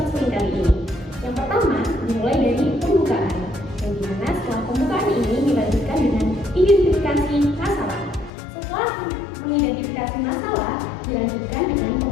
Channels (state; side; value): drops out; right; at 8.3 s